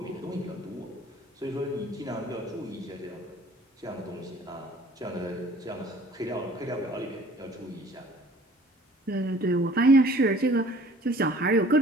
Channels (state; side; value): normal; both; correlation 0.52